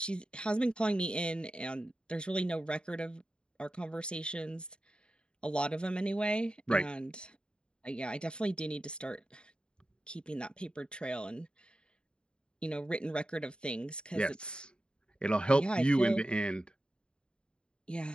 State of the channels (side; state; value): right; late; 0.051 ms